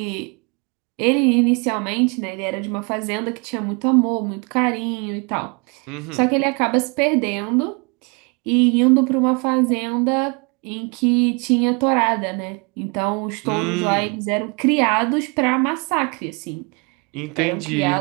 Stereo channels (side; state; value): left; quieter; 32.2 dB